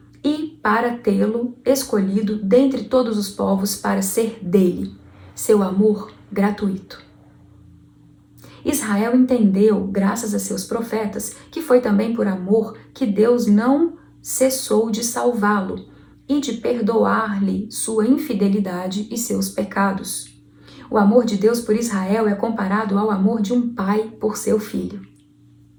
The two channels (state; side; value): identical; both; correlation 1.00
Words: e para tê-lo escolhido dentre todos os povos para ser dele, seu amor gratuito. Israel entendeu, graças a seus profetas, que foi também por amor que Deus não cessou de salvá-lo e de perdoar-lhe sua infidelidade e seus pecados. O amor de Deus por Israel é comparado ao amor de um pai por seu filho.